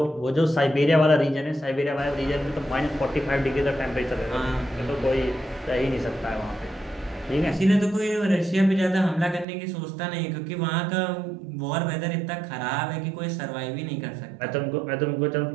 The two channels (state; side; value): drops out; left; at 9.5 s